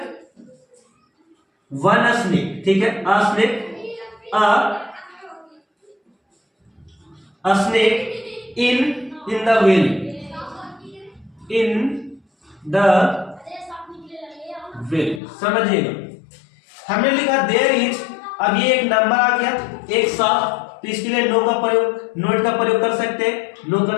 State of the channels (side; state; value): right; drops out; at 15.2 s